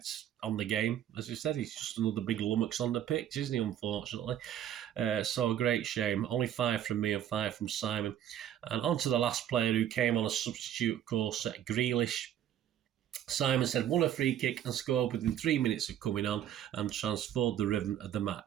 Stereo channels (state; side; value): quieter; left; 10.7 dB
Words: on the game, as I said, he's just another big lummox on the pitch, isn't he, unfortunately? So a great shame. Only 5 from me and 5 from Simon. And on to the last player who came on a substitute, of course, Grealish. Simon said, won a free kick and scored within 3 minutes of coming on and transformed the rhythm of the